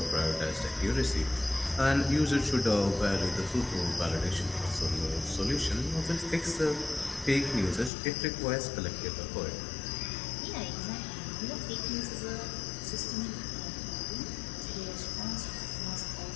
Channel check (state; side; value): drops out; right; at 7.9 s